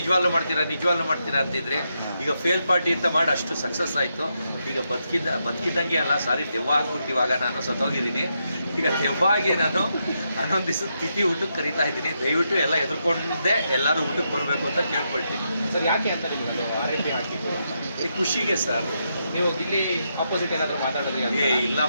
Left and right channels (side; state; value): both; inverted; correlation -0.82